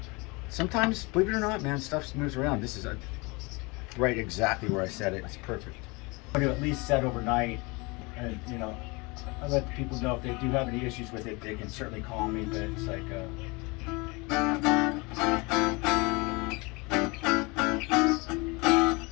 Sometimes, believe it or not, man, stuff moves around. This is right exactly where I set it. It's perfect. I'm going to at least set overnight, and you know, I let the people know if they do have any issues with it, they can certainly call me. But it's like, there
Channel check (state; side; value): quieter; right; 26.8 dB